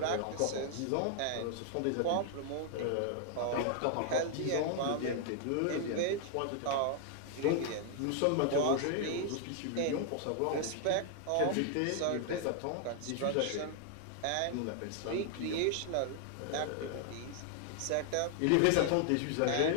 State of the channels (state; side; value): different; both; correlation 0.00